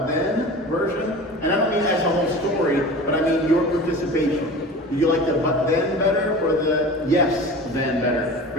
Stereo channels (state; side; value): normal; both; correlation 0.36